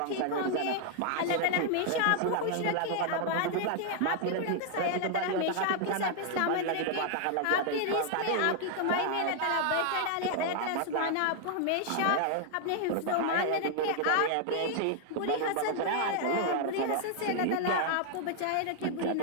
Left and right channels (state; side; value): different; both; correlation 0.00